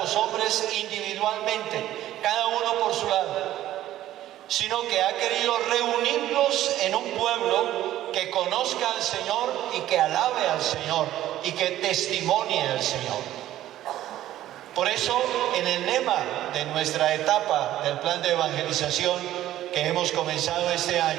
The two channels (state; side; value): quieter; left; 13.5 dB